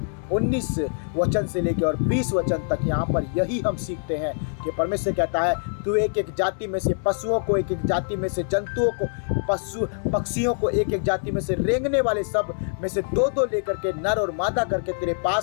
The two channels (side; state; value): right; silent; digital silence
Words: 19 वचन से लेकर और 20 वचन तक यहाँ पर यही हम सीखते हैं कि परमेश्वर कहता है तू एक एक जाति में से पशुओं को, एक एक जाति में से जंतुओं को, पक्षियों को, एक एक जाति में से रेंगने वाले सब में से दो दो लेकर के नर और मादा करके तेरे